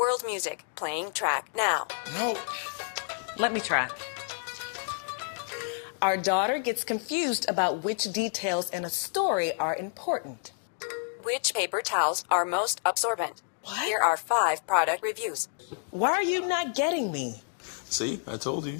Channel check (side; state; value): right; silent; digital silence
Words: music, playing track now. No. Let me try. Our daughter gets confused about which details in a story are important. Which paper towels are most absorbent? What? Here are 5 product reviews. Why are you not getting me? See, I told you.